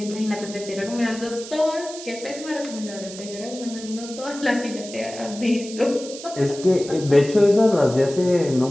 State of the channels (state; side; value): noise; right; hiss, 13 dB below the sound